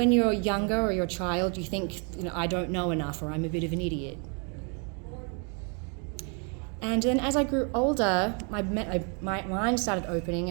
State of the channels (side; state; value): left; quieter; 37.3 dB